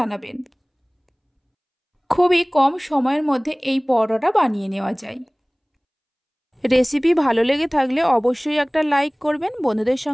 খুবই কম সময়ের মধ্যে এই পরোটাটা বানিয়ে নেওয়া যায়। রেসিপি ভালো লেগে থাকলে অবশ্যই একটা লাইক করবেন, বন্ধুদের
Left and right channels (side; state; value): both; identical; correlation 1.00